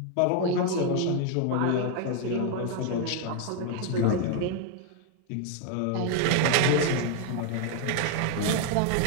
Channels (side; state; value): both; different; correlation 0.00